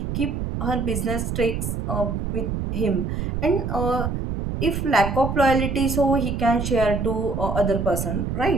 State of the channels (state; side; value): noise; right; rumble, 3 dB below the sound